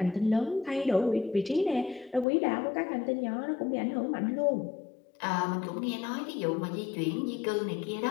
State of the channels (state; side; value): drops out; right; at 2.2 s